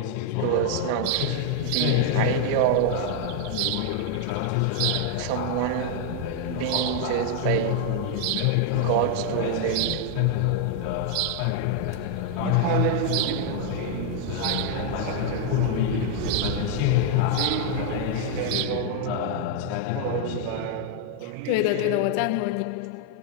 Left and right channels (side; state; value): both; different; correlation 0.00